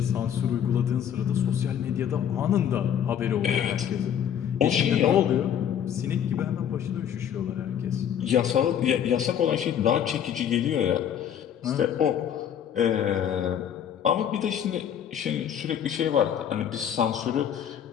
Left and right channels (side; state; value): right; quieter; 9.2 dB